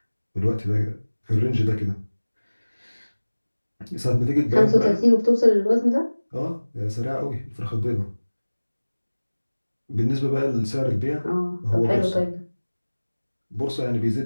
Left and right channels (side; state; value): both; inverted; correlation -1.00